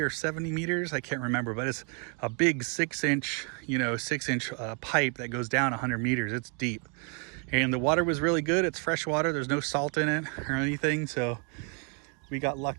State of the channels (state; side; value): quieter; left; 38.0 dB